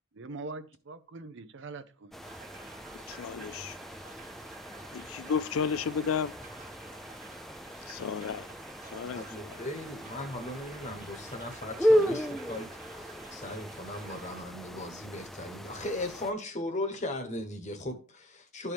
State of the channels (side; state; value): both; normal; correlation 0.54